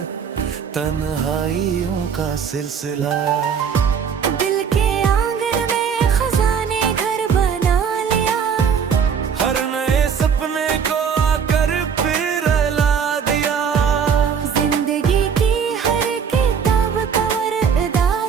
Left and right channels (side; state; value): left; quieter; 6.9 dB